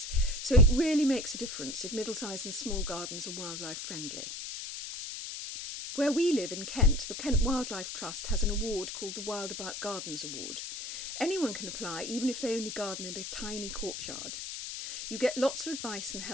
so it really makes a difference if middle-sized and small gardens are wildlife friendly. Where we live in Kent, the Kent Wildlife Trust has an award called the Wild About Gardens Award. Anyone can apply, even if they only garden in a tiny courtyard. You get lots of advice and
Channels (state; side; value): noise; left; hiss, 7 dB below the sound